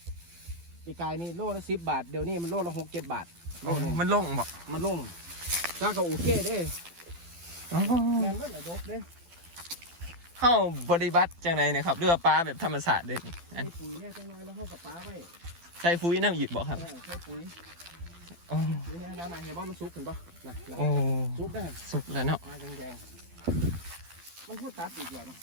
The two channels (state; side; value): late; left; 12 ms